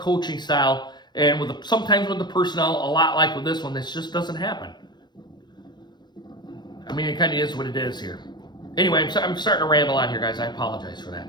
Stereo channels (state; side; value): late; right; 0.21 ms